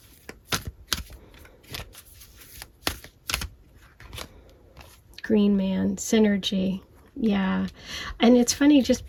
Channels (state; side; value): identical; both; correlation 1.00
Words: Green man, synergy. Yeah, and it's funny just